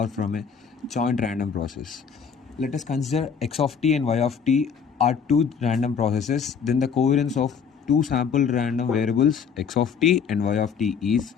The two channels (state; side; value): quieter; right; 6.6 dB